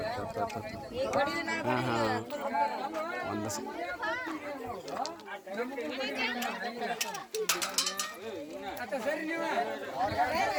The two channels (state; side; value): identical; both; correlation 1.00